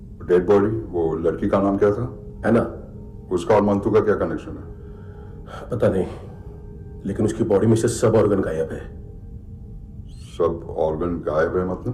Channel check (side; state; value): both; identical; correlation 1.00